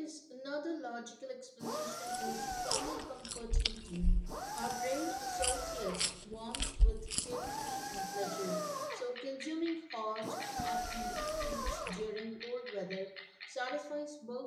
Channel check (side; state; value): both; identical; correlation 1.00